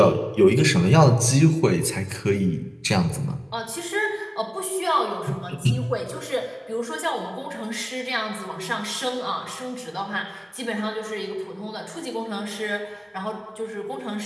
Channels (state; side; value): identical; both; correlation 1.00